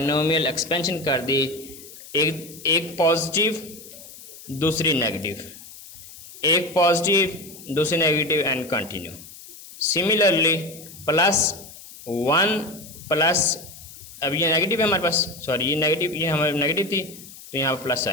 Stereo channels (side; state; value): left; noise; hiss, 17 dB below the sound